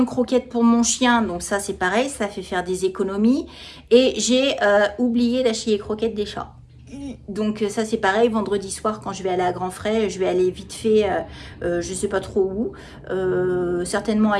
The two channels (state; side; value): identical; both; correlation 1.00